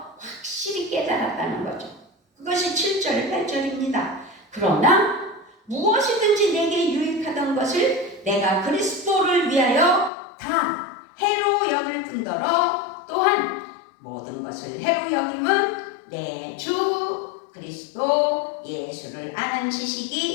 확실히 깨달았다는 거죠. 그것이 7절, 8절입니다. 그러나 무엇이든지 내게 유익하던 것을 내가 그리스도를 위하여 다 해로 여길 뿐더러 또한 모든 것을 해로 여김은 내 주 그리스도 예수를 아는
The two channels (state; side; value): drops out; right; at 10.1 s